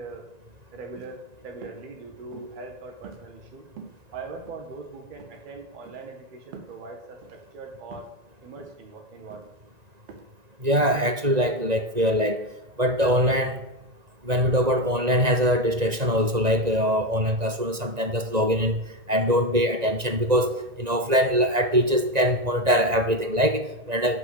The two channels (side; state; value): left; late; 1.9 ms